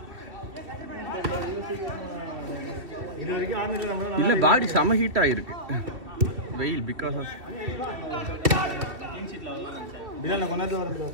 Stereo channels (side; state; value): left; late; 2.8 ms